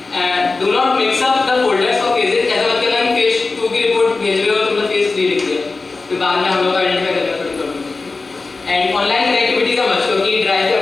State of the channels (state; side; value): quieter; right; 3.8 dB